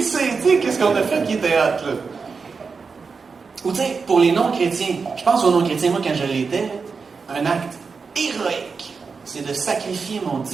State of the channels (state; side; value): quieter; left; 5.0 dB